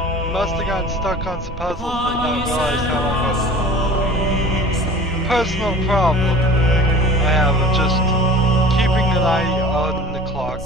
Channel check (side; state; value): both; normal; correlation 0.42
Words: must have gotten stuck on some puzzles and not realized how long I was. Personal problem I have of just keeping an eye on the